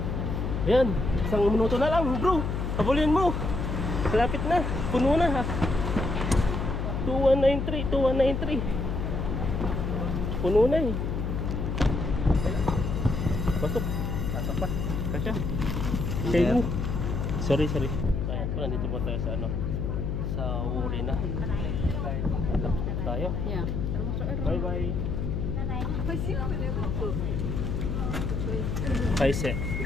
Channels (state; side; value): noise; left; hum, 1 dB below the sound